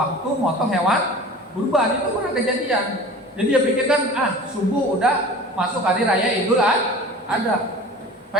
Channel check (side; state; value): both; normal; correlation 0.40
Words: motong hewan kurban. Itu pernah kejadian. Jadi dia pikirkan subuh udah masuk hari raya Idul Adha.